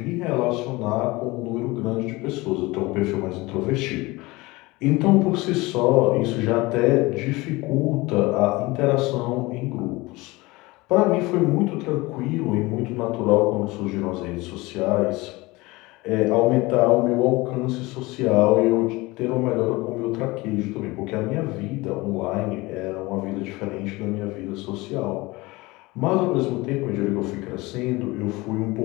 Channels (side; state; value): right; quieter; 22.1 dB